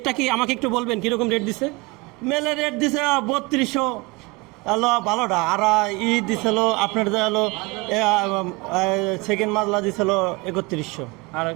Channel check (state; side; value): quieter; left; 25.3 dB